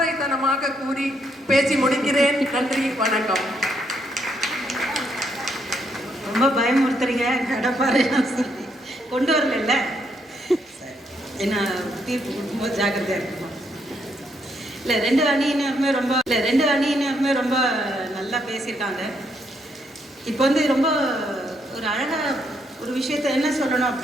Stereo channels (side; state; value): both; normal; correlation 0.75